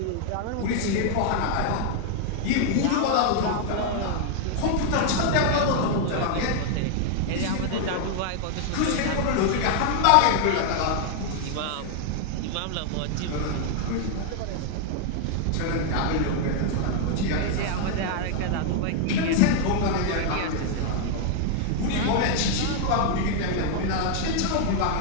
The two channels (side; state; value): both; different; correlation 0.00